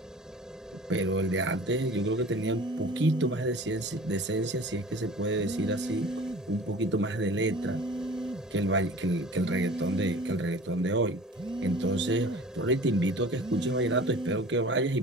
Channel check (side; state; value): both; normal; correlation 0.43